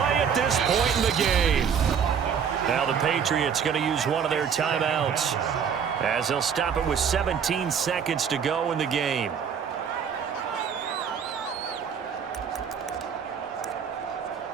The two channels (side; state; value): left; quieter; 7.3 dB